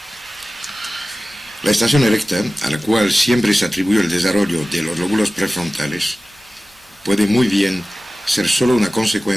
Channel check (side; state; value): both; normal; correlation 0.96